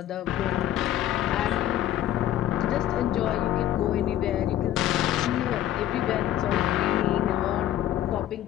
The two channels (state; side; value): quieter; right; 12.4 dB